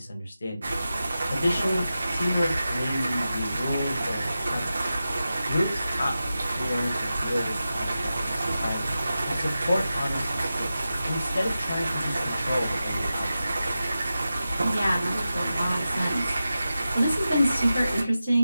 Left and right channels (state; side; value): inverted; both; correlation -0.93